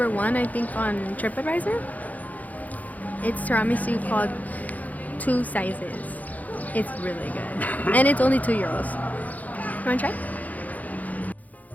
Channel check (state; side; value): late; right; 0.078 ms